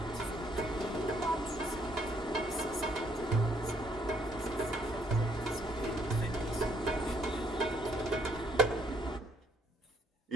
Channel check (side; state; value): both; normal; correlation 0.68